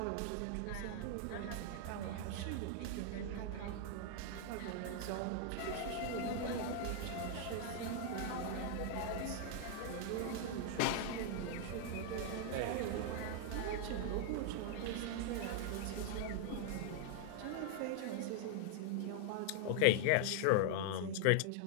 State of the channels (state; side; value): different; both; correlation 0.00